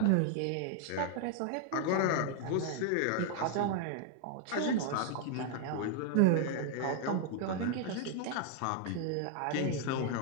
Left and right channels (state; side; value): different; both; correlation 0.00